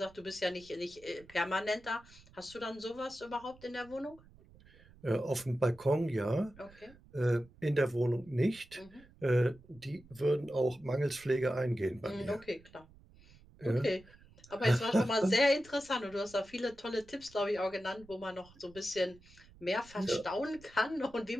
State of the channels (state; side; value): noise; right; rumble, 24 dB below the sound